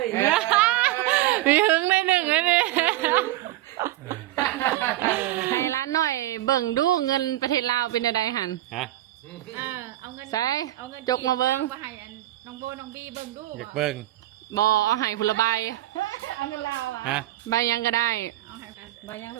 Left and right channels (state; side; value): quieter; left; 15.3 dB